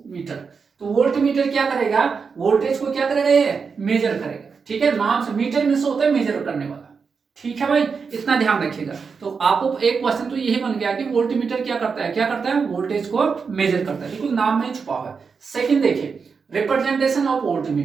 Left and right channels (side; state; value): left; quieter; 5.5 dB